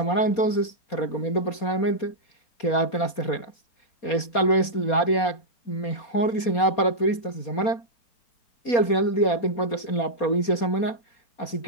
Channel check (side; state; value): right; late; 4.2 ms